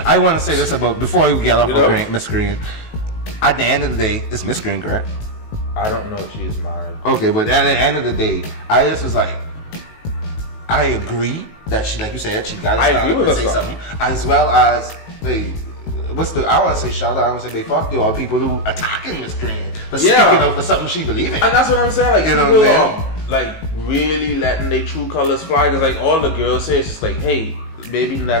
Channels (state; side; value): late; right; 19 ms